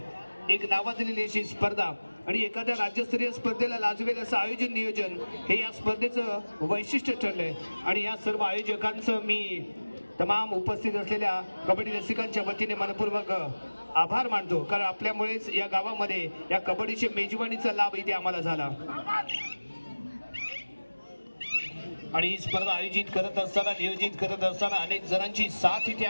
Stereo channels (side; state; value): both; inverted; correlation -1.00